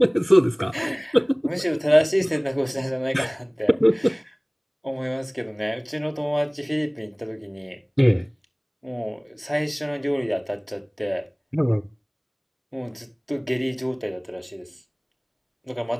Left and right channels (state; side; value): identical; both; correlation 1.00